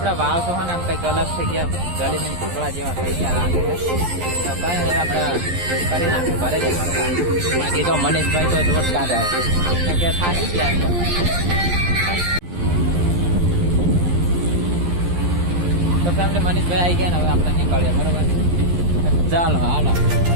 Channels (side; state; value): left; late; 11 ms